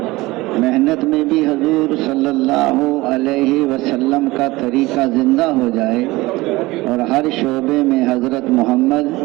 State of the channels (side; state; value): left; quieter; 20.4 dB